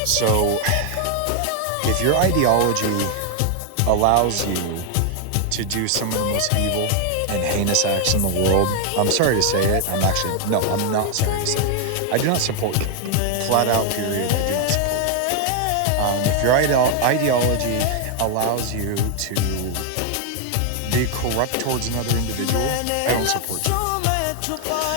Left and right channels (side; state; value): both; different; correlation 0.00